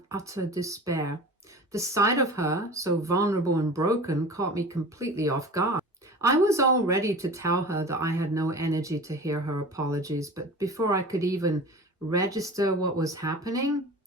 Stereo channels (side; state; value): both; normal; correlation 0.37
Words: utter despair. The sight of her, so vulnerable and broken, caught me completely off guard. I was all ready to tell her that I had no energy to hear her apologies, but before I could even register what was happening,